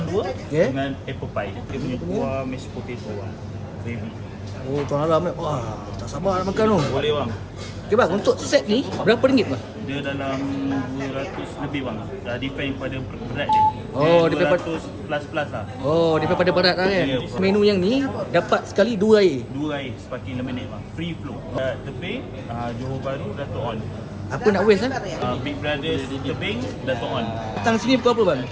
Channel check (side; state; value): both; identical; correlation 1.00